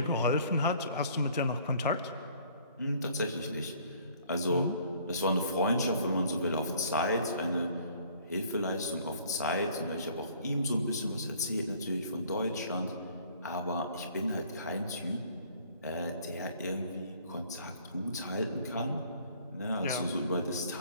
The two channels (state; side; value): inverted; both; correlation -0.57